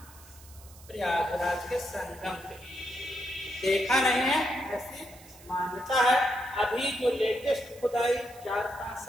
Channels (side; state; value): right; noise; hiss, 21 dB below the sound